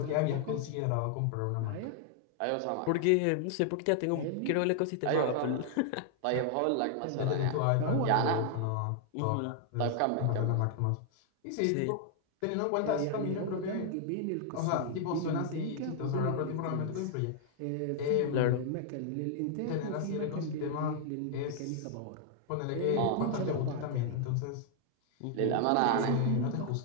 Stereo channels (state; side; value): different; both; correlation 0.00